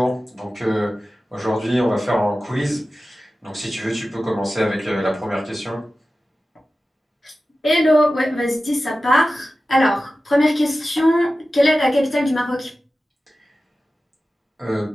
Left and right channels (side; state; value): both; normal; correlation 0.95